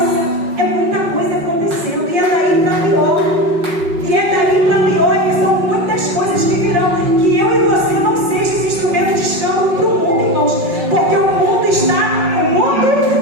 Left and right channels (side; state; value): left; late; 5.4 ms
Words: é muita coisa acontecendo, e é daí para pior. E é daí para pior, e são muitas coisas que virão, que eu e você não sejam esse instrumento de escândalo para o mundo, irmãos, porque o mundo